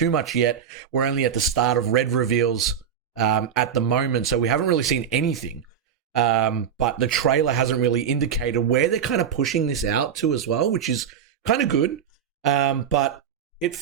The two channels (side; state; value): left; quieter; 8.2 dB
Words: much yet. We're only at the start of red reveals at the moment, so we haven't really seen anything. But the trailer hasn't really indicated where they're kind of pushing this out to as well, which is kind of good. But it